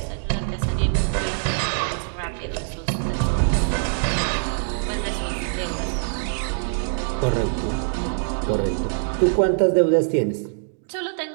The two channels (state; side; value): silent; left; digital silence